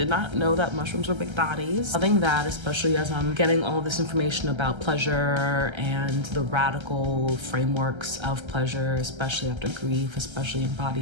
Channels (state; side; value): late; left; 1.3 ms